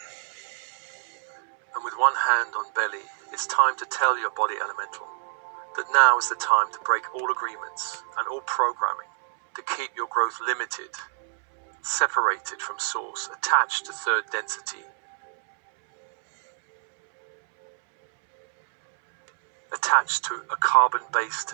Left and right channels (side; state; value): left; silent; 61 dB below the other